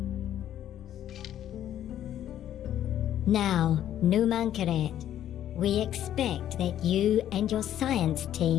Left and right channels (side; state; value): right; quieter; 11.2 dB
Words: Now, Numankaret, we expect that you and your science